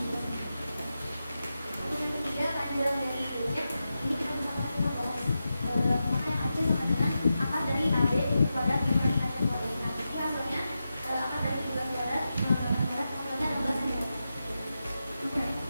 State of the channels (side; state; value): both; inverted; correlation -0.90